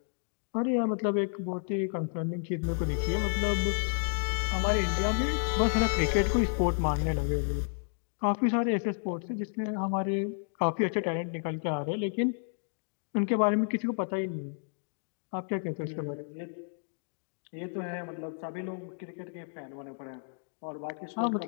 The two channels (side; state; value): right; silent; digital silence